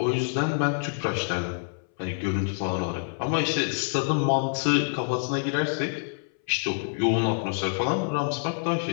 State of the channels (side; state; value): right; silent; 60 dB below the other